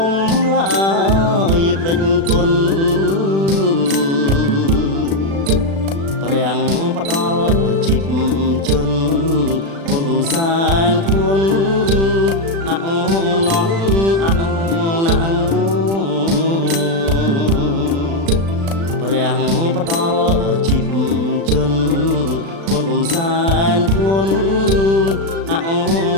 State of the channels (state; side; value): late; left; 36 ms